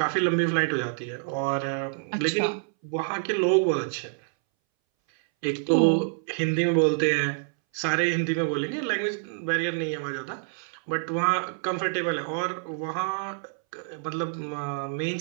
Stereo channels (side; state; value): left; silent; 60 dB below the other